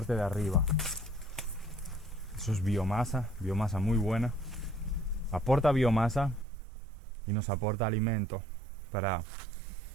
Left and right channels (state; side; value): drops out; left; at 6.5 s